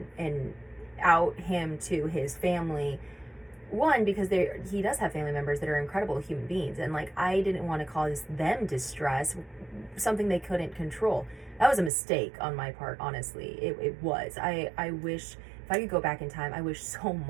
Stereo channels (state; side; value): drops out; left; at 11.9 s